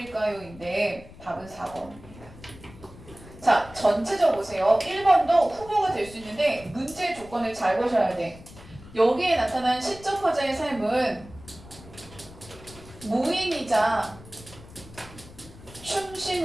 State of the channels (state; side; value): noise; left; rumble, 19 dB below the sound